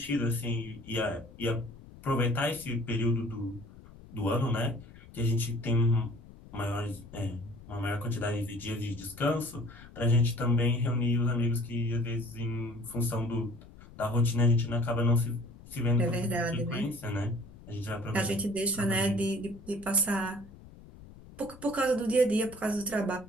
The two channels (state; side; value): noise; left; rumble, 19 dB below the sound